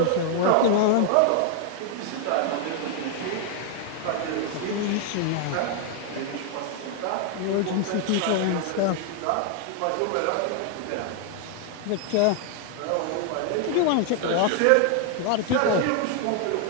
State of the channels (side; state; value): both; different; correlation 0.00